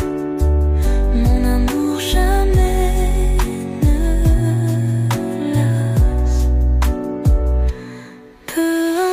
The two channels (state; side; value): identical; both; correlation 1.00